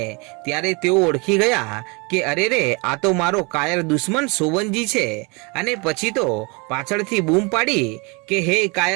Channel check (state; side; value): quieter; left; 29.4 dB